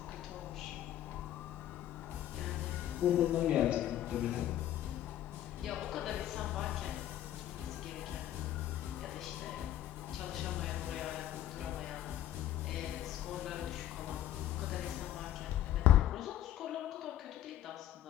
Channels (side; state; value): right; quieter; 12.2 dB